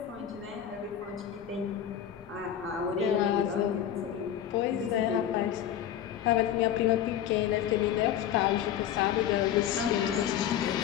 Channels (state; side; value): quieter; right; 10.2 dB